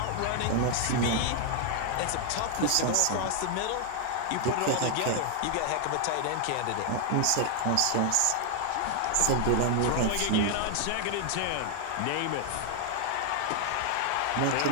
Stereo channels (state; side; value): different; both; correlation 0.00